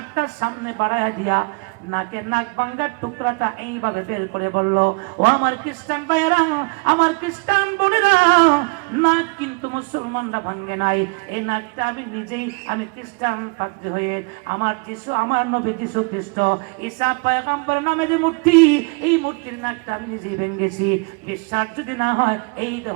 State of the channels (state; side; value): quieter; left; 31.3 dB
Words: সামনে বাড়াইয়া দিয়া নাকের নাক ভাঙার টুকরাটা এইভাবে বের করে বলল, ও আমার খ্রিস্টান ভাইয়েরা, আমার খ্রিস্টান বোনেরা, নাক কিন্তু মুসলমানরা ভাঙে নাই। এই নাকটা আমি নিজেই, আমি খ্রিস্টান পাদ্রী হয়ে আমার যিশু, আমার নবী যিশু খ্রিস্ট ঈসা পয়গম্বর নামে যে মূর্তি, এই মূর্তির নাকটা আমি নিজেই ভেঙেছি। বিশ্বাস যদি না হয়, এই